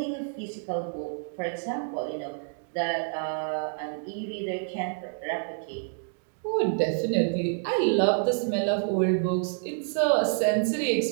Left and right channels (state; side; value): silent; left; digital silence